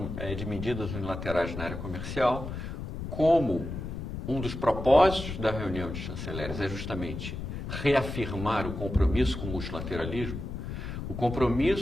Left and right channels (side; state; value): left; noise; rumble, 6 dB below the sound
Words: de medidas unilaterais na área comercial, como um dos propósitos da reunião de chanceleres é justamente reafirmar o compromisso com o multilateralismo, o